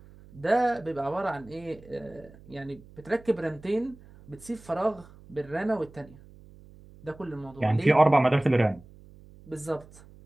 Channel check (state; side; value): noise; right; hum, 22 dB below the sound